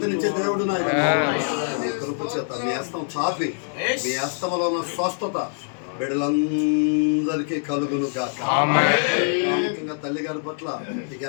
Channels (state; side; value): silent; right; digital silence